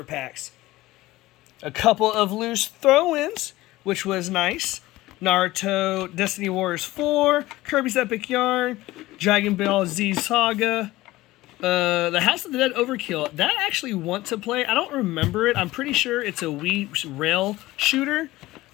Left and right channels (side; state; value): right; quieter; 17.9 dB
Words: packs. A couple of loose throw-ins, which was nice. Naruto, Destiny Warriors 4, Kirby's Epic Yarn, Dragon Ball Z Saga, the House of the Dead Overkill. That I actually want to play. I don't remember it. I'm pretty sure it's a Wii rail shooter